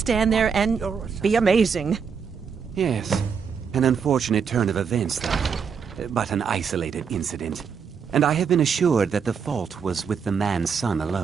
there and be amazing. Yes. An unfortunate turn of events, though. But an isolated incident. And I have been assured that the fault was with the man's son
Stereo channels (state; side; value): quieter; left; 6.4 dB